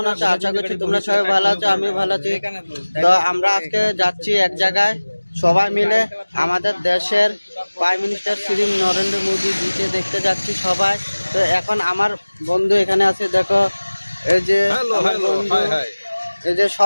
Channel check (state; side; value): inverted; both; correlation -1.00